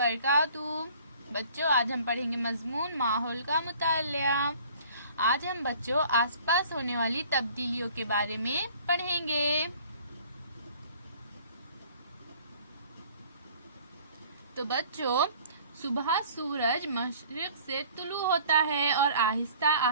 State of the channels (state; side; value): inverted; both; correlation -0.52